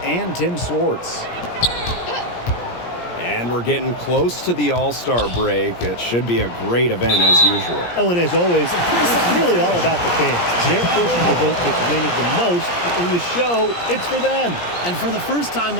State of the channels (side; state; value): right; late; 17 ms